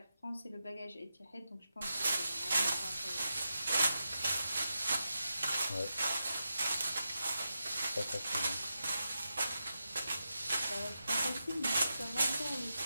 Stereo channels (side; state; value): both; inverted; correlation -0.88